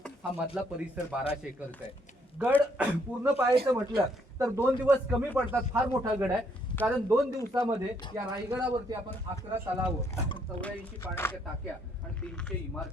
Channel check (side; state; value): both; normal; correlation 0.70